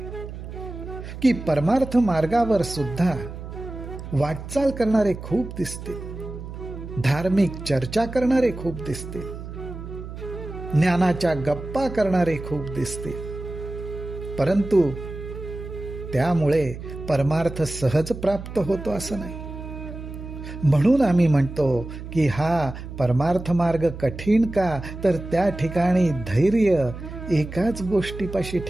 की परमार्थ मार्गावर सुद्धा वाटचाल करणारे खूप दिसतील, धार्मिक चर्चा करणारे खूप दिसतील, ज्ञानाच्या गप्पा करणारे खूप दिसतील, परंतु त्यामुळे परमार्थ सहज प्राप्त होतो असं नाही. म्हणून आम्ही म्हणतो की हा परमार्थ मार्ग कठीण का, तर त्या ठिकाणी धैर्य एकाच गोष्टीपाशी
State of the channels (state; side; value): noise; right; hum, 10 dB below the sound